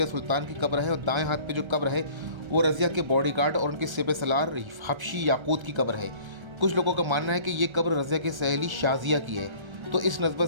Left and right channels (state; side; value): late; left; 1.3 ms